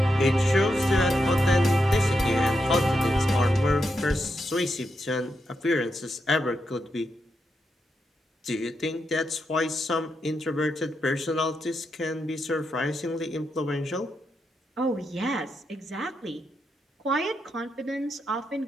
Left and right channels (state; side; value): normal; both; correlation 0.84